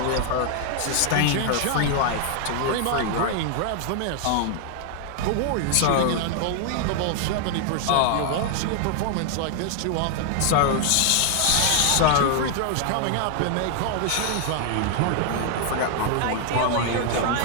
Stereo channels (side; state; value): both; different; correlation 0.00